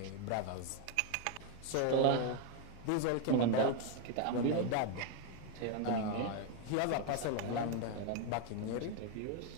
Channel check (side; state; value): both; different; correlation 0.01